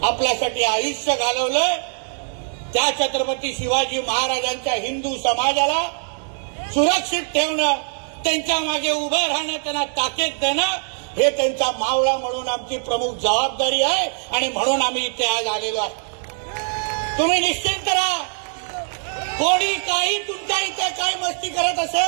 आपल्यासाठी आयुष्य घालवलं, त्या छत्रपती शिवाजी महाराजांच्या हिंदू समाजाला सुरक्षित ठेवणं, त्यांच्या मागे उभं राहणं, त्यांना ताकद देणं, हे त्यांचा मावळा म्हणून आमची प्रमुख जबाबदारी आहे. आणि म्हणून आम्ही इथे आज आलेलो आहे. तुम्ही निश्चिंत राहा. कोणी काही तुमच्या इथे काही मस्ती करत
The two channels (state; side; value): silent; left; 64 dB below the other